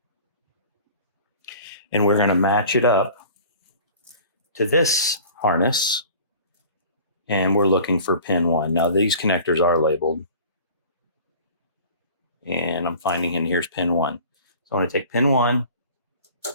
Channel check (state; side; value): inverted; both; correlation -0.44